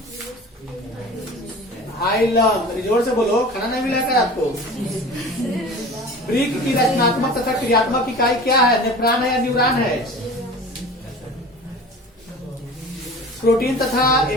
हाइलम। जोर से बोलो, खाना नहीं मिला क्या आपको? वृक्क की रचनात्मक तथा क्रियात्मक इकाई क्या है? नेफ्रॉन है या न्यूरॉन है? प्रोटीन तथा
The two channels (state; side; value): normal; both; correlation 0.39